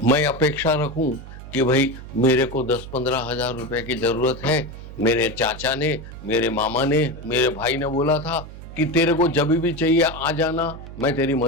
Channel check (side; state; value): right; noise; hum, 13 dB below the sound